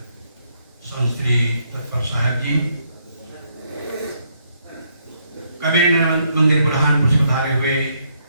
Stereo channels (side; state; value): both; inverted; correlation -0.73